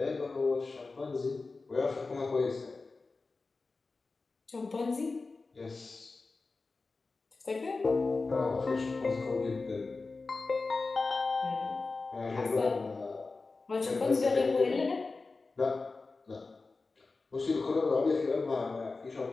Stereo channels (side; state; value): right; quieter; 3.9 dB